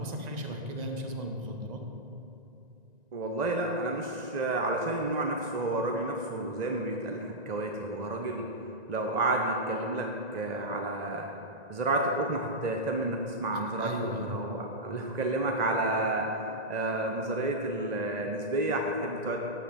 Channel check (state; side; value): late; left; 1.9 ms